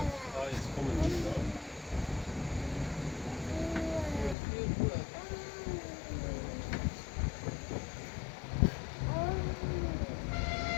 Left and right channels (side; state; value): right; drops out; at 4.4 s